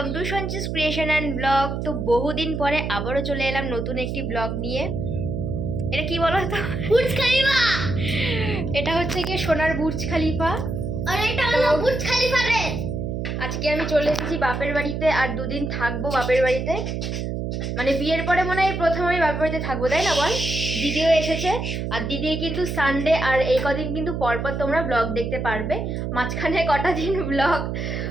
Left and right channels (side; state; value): right; noise; hum, 3 dB below the sound